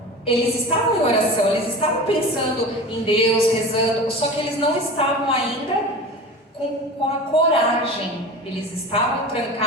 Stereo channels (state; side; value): normal; both; correlation 0.33